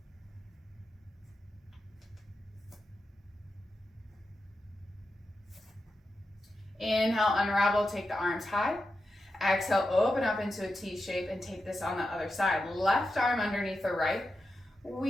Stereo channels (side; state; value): both; normal; correlation 0.89